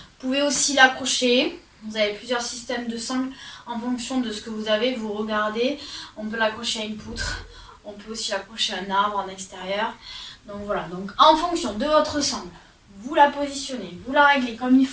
pouvez aussi l'accrocher. Vous avez plusieurs systèmes de sangles en fonction de ce que vous avez. Vous regardez, on peut l'accrocher à une poutre. On peut aussi l'accrocher à un arbre en extérieur. Donc voilà, donc en fonction de votre sangle, vous la positionnez, vous la réglez comme il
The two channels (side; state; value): both; identical; correlation 1.00